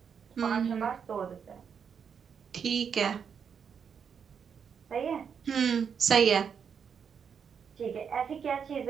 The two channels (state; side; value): quieter; left; 7.0 dB